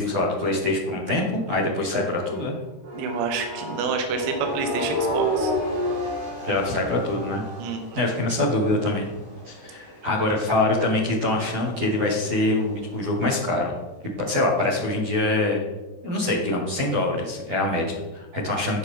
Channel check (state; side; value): late; left; 12 ms